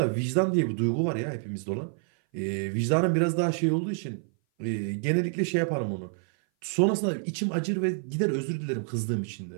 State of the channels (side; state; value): left; silent; 57 dB below the other